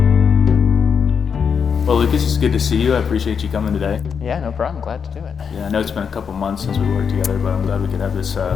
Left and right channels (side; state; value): right; quieter; 6.6 dB